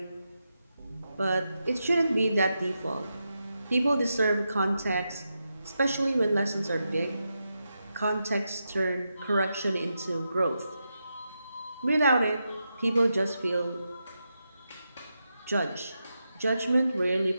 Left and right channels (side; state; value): both; inverted; correlation -0.87